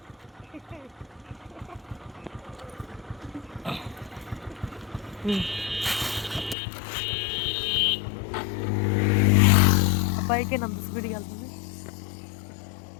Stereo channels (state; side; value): drops out; right; at 6.6 s